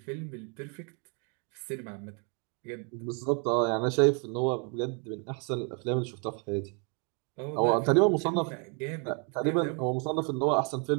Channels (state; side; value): quieter; left; 37.0 dB